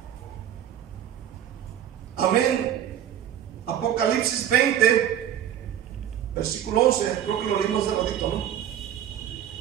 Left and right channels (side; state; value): left; quieter; 10.5 dB